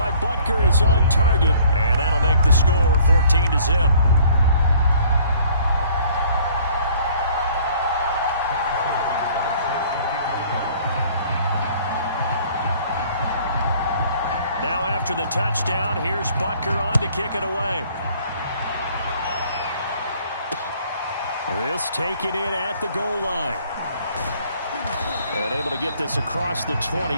Butker is on target. And that'll make the score 14-0. Now after the touchdown, here's Butker on to kick it away. This taken in at the goal line. And able to get this across the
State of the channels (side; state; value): both; inverted; correlation -0.56